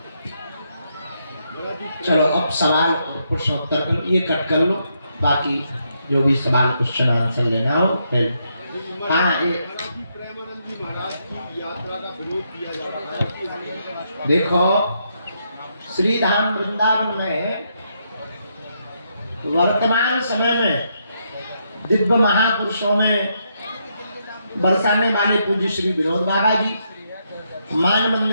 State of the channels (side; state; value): both; inverted; correlation -0.78